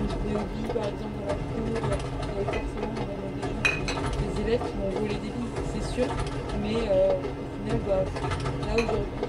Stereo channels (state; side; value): identical; both; correlation 1.00